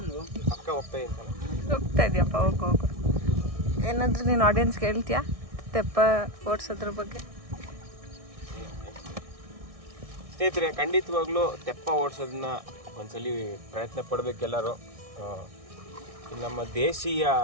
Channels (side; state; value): left; late; 1.6 ms